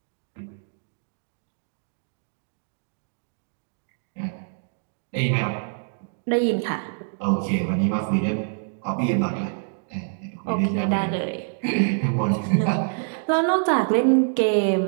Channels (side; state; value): left; silent; digital silence